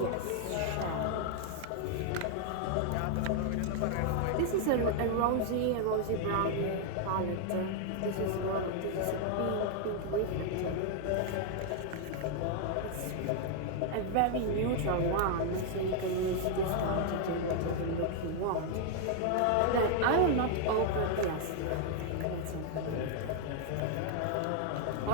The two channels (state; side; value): different; both; correlation 0.00